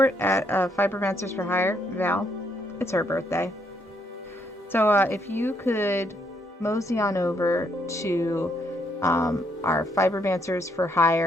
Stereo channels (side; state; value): both; normal; correlation 0.73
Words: at Fibermancers for Hire, Val, it's her birthday. So if you could mosey on over to our Fibermancers for